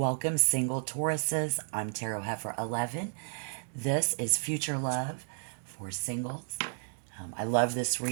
single Tauruses. I'm Tarot Heifer 11. This is Future Love for singles. I love this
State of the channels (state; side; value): silent; left; digital silence